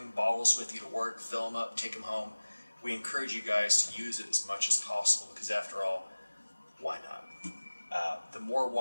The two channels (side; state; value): both; inverted; correlation -1.00